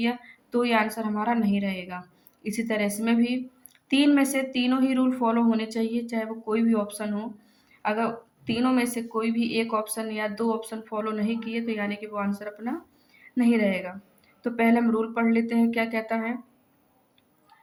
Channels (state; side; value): identical; both; correlation 1.00